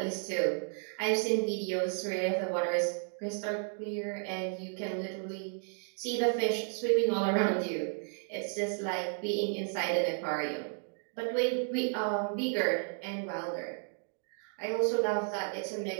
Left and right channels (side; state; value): left; silent; 56 dB below the other